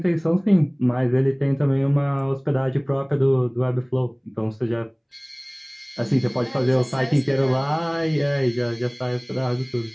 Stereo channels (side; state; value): both; identical; correlation 1.00